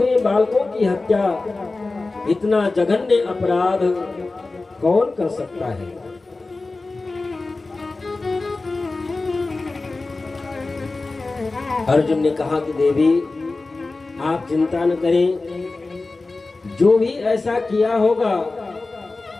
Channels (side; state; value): right; quieter; 3.5 dB